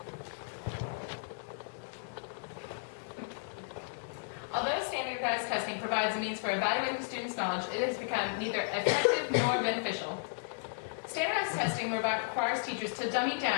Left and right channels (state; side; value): silent; right; digital silence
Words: Although standardized testing provides a means for evaluating students' knowledge, it has become neither effective nor beneficial. Standardized testing requires teachers to dummy